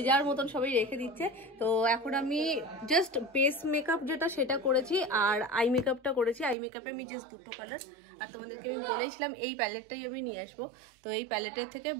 যার মতন সবাই রেখে দিচ্ছে। তো এখন আমি জাস্ট বেস মেকআপ যেটা সেটা করেছি আর আই মেকআপটা করেছি। আই মেকআপে আমি জাস্ট দুটো কালার, আর তোমাদেরকে আমি বলেছিলাম এই প্যালেটটাই আমি নিয়ে আসবো। তো এই প্যালেটের থেকে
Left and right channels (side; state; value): left; drops out; at 6.6 s